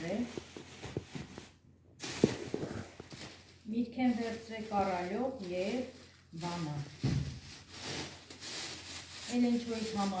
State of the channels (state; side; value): identical; both; correlation 1.00